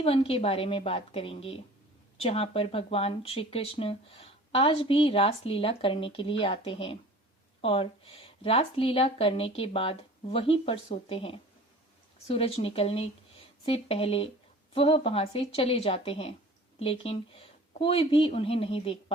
के बारे में बात करेंगे, जहाँ पर भगवान श्री कृष्ण आज भी रास लीला करने के लिए आते हैं और रास लीला करने के बाद वहीं पर सोते हैं। सूरज निकलने से पहले वह वहां से चले जाते हैं, लेकिन कोई भी उन्हें नहीं देख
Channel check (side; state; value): both; normal; correlation 0.44